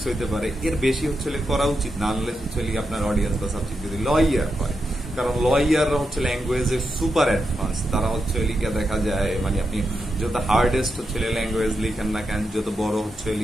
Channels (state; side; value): normal; both; correlation 0.86